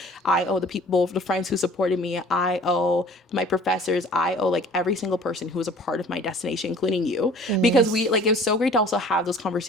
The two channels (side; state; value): both; normal; correlation 0.49